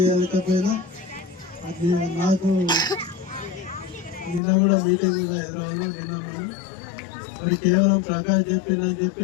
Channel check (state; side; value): drops out; right; at 4.4 s